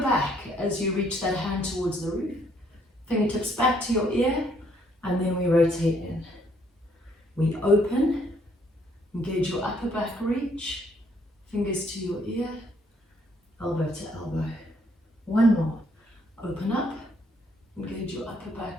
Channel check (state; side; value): normal; both; correlation 0.67